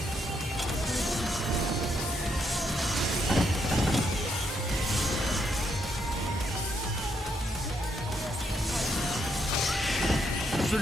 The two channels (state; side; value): normal; both; correlation 0.76